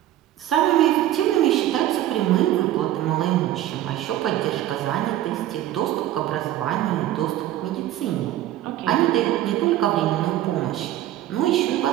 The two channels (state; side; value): quieter; left; 13.4 dB